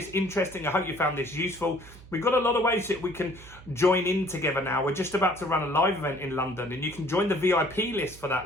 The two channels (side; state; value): right; noise; hum, 19 dB below the sound